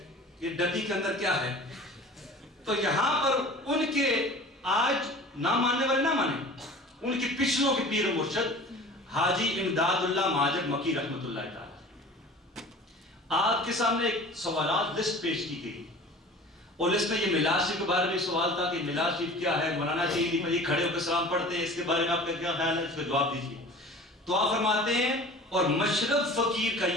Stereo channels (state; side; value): normal; both; correlation 0.42